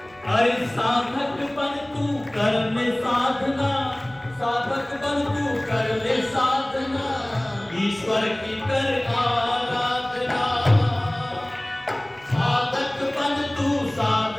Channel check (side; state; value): right; noise; rumble, 27 dB below the sound